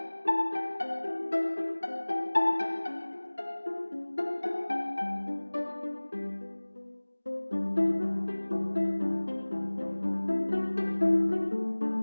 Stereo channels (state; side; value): inverted; both; correlation -1.00